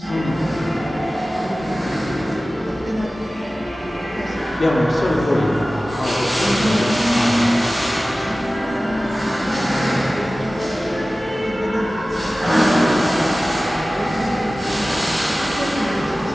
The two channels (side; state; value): both; normal; correlation 0.97